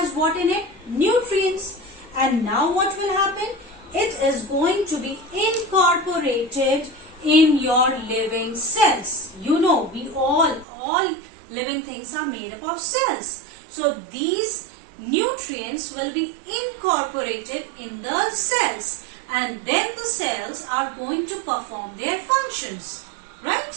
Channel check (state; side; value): drops out; left; at 10.7 s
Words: what in it? Nutrients. And now what will happen? It is going to be incorporated in your living cells. You know, we all living things are made up of cells. So these nutrients will be incorporated in the cells, and then the cells are going to perform their functions,